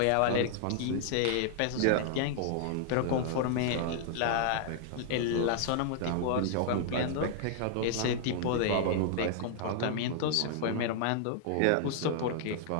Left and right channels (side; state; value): both; different; correlation -0.01